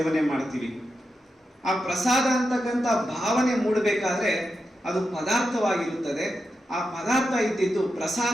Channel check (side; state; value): both; normal; correlation 0.88